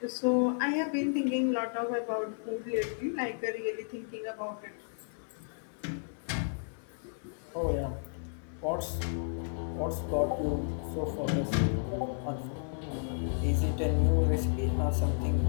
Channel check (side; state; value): right; silent; digital silence